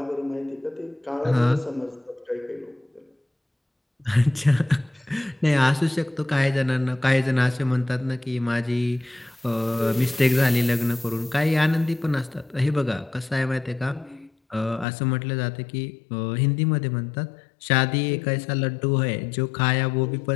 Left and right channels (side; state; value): right; drops out; at 14.9 s